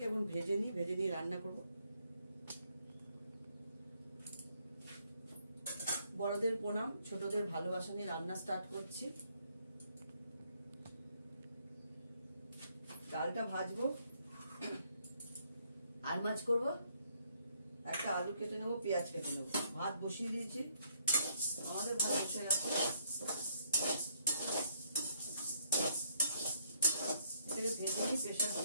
এখন ভেজে নিয়ে রান্না করবো। বড়দের প্রণাম, ছোটদের ভালোবাসা নিয়ে রান্না স্টার্ট করছি। ডালটা ভাজবো, আর মাছ করবো। একটা আলু কেটে নেবো, পেঁয়াজ কেটে নেবো। ভাত বসিয়ে দিয়েছি, আমাদের ভাত বসে গেছে। এটাকে ভেজে নিয়ে প্রেসার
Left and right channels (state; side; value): inverted; both; correlation -0.70